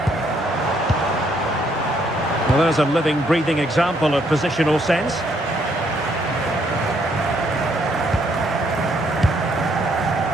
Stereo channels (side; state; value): both; normal; correlation 0.70